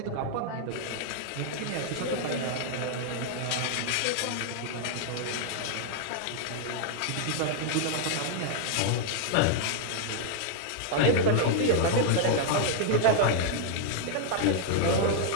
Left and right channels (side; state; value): both; different; correlation -0.01